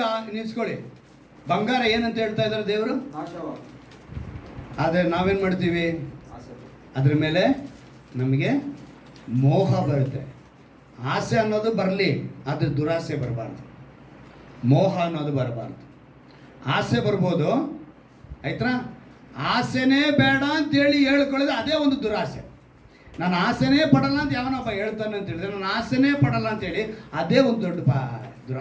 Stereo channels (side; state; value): both; identical; correlation 1.00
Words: ನಿಲ್ಸ್ಕೊಳ್ಳಿ. ಬಂಗಾರ ಏನಂತ ಹೇಳ್ತಾ ಇದ್ದಾರೆ ದೇವರು? ಆದರೆ ನಾವೇನು ಮಾಡ್ತೀವಿ? ಅದ್ರ ಮೇಲೆ ನಮಗೆ ಮೋಹ ಬರುತ್ತೆ. ಆಸೆ ಅನ್ನೋದು ಬರಲಿ, ಆದರೆ ದುರಾಸೆ ಬರಬಾರ್ದು. ಮೋಹ ಅನ್ನೋದು ಬರಬಾರ್ದು. ಆಸೆ ಬರ್ಬೋದು, ಆಯ್ತಾ? ಆಸೆನೇ ಬೇಡ ಅಂತೇಳಿ ಹೇಳ್ಕೊಳ್ಳೋದು ಅದೇ ಒಂದು ದುರಾಸೆ. ನಾನು ಆಸೆನೇ ಪಡಲ್ಲ ಅಂತ ಯಾವನೊಬ್ಬ ಹೇಳ್ತಾನೆ ಅಂತ ಹೇಳಿದ್ರೆ, ನಾನು ಆಸೆನೇ ಪಡಲ್ಲ ಅಂತೇಳಿ ಅದೇ ಒಂದು ದೊಡ್ಡ